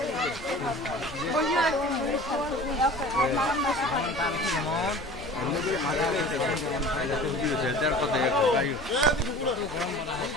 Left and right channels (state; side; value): normal; both; correlation 0.41